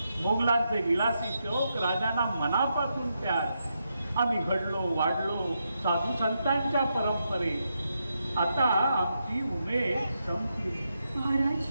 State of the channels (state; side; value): inverted; both; correlation -0.83